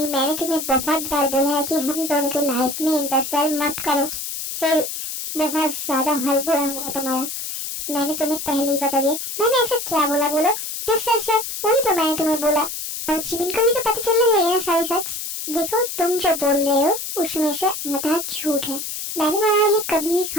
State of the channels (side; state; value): left; noise; hiss, 6 dB below the sound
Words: मैंने तुम्हें बहुत बार बोला है कि हम दोनों की लाइफ में इंटरफेयर मत करो, फिर बहुत ज्यादा हल बुरा होगा तुम्हारा। मैंने तुम्हें पहले ही बता दिया। मैंने ऐसा क्या बोला बोलो? जब सच है वही तो मैंने तुम्हें बोला। और जिमिन को भी तो पता चलना चाहिए ना सारी सच। देखो, तुम जो बोल रहे हो उसमें से आधा झूठ है। मैंने तुम्हारे लिए कभी भी